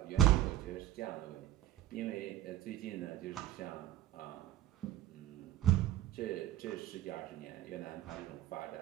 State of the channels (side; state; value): left; quieter; 13.0 dB